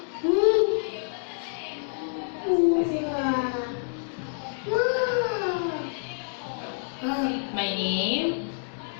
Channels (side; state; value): right; silent; digital silence